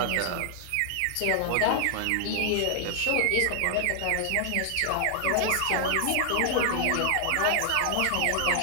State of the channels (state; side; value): different; both; correlation 0.00